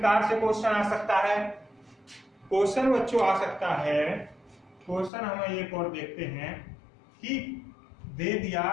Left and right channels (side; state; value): right; drops out; at 5.1 s